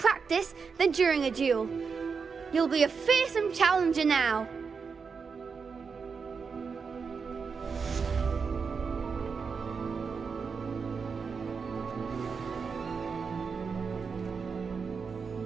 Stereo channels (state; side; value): quieter; left; 5.5 dB